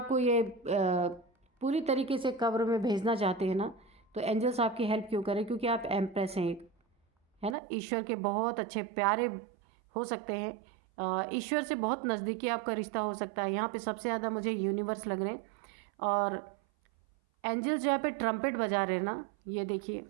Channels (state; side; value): drops out; left; at 7.6 s